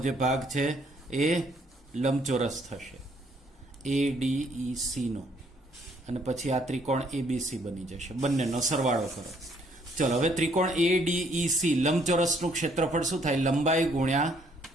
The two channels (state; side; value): normal; both; correlation 0.66